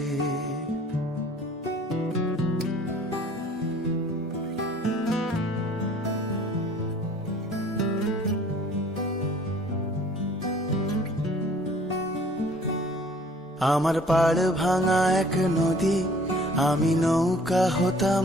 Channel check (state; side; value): normal; both; correlation 0.53